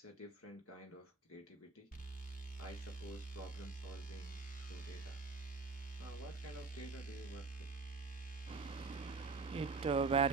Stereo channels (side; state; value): left; quieter; 4.4 dB